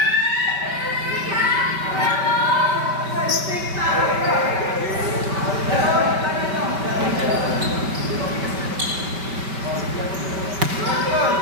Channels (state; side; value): late; left; 5.2 ms